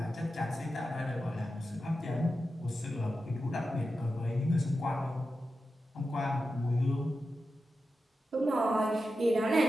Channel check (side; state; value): both; normal; correlation 0.91